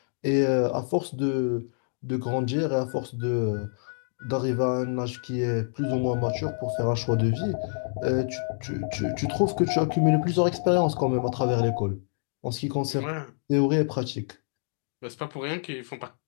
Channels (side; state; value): right; silent; digital silence